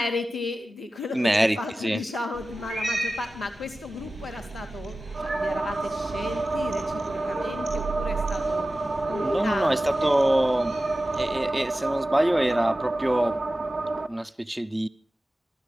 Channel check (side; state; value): both; normal; correlation 0.95